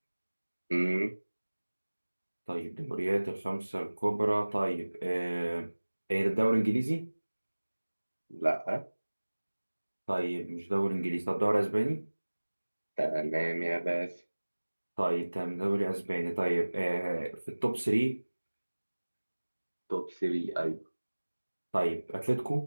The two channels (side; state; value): both; inverted; correlation -1.00